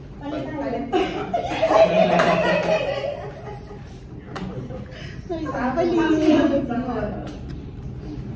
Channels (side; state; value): both; identical; correlation 1.00